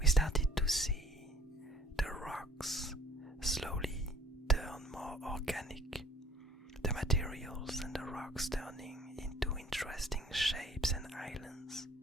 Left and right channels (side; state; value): both; normal; correlation 0.55